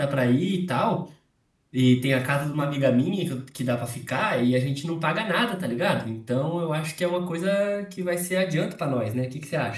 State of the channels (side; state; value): both; identical; correlation 1.00